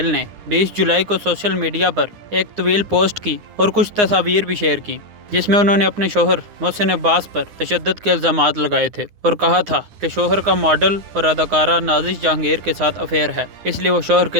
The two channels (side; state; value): left; late; 9.7 ms